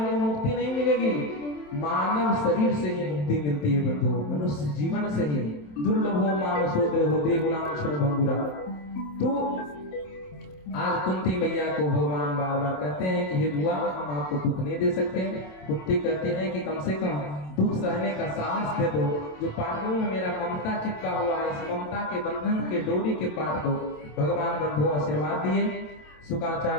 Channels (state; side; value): late; right; 27 ms